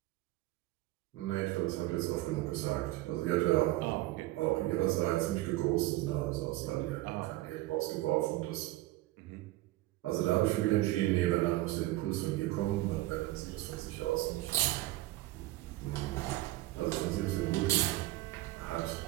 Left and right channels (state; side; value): quieter; left; 17.7 dB